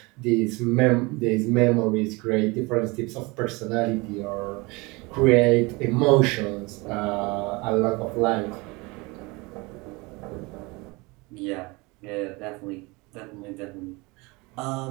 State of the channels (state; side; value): quieter; left; 25.4 dB